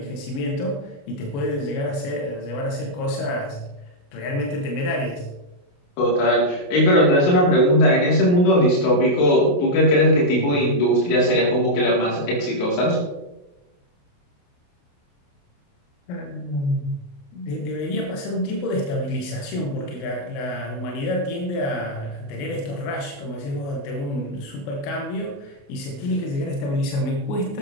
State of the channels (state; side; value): late; right; 28 ms